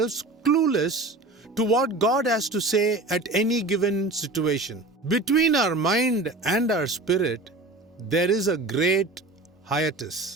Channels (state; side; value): quieter; left; 3.0 dB